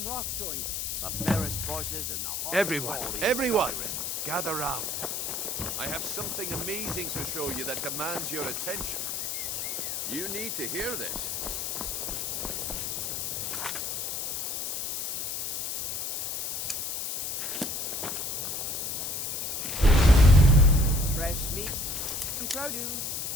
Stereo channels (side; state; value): left; noise; hiss, 2 dB below the sound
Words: Everyone, gather round. I have something amazing to show you that demands your attention. You need to hear this. Fresh meat and produce.